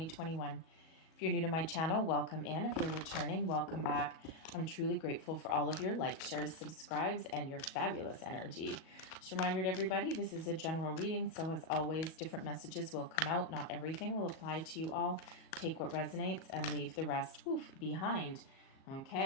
If you're new to my channel, welcome in. If you're returning, welcome back. I'm truly grateful for all of your likes, shares, subscribes, and your fabulous energy. Just a reminder to everybody, this is a general reading, so as always, different messages will come out. Not everything will apply to you all. Take what resonates and leave the rest behind.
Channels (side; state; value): right; late; 37 ms